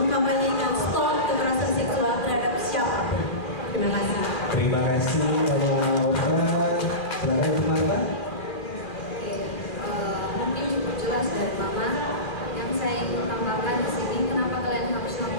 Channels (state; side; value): late; right; 2.4 ms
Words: stop kekerasan seksual terhadap siapapun. Terima kasih. Terima kasih kalau silakan Marta. Mungkin cukup jelas dari Mama. Yang saya ingin tambahkan di sini, kenapa kalian harus